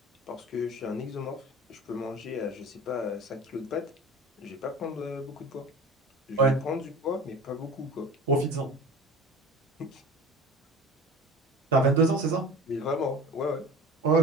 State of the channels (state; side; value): normal; both; correlation 0.37